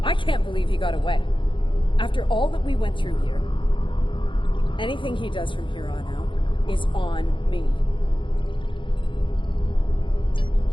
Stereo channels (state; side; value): late; right; 0.24 ms